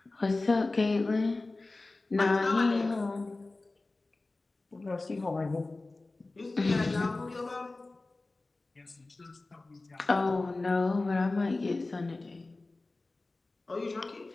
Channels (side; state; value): right; quieter; 3.2 dB